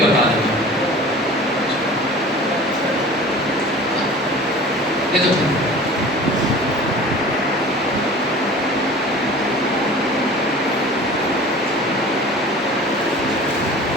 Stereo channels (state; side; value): normal; both; correlation 0.42